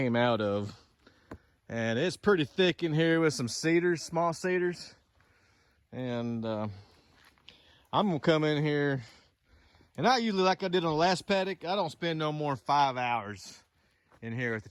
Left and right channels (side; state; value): both; identical; correlation 1.00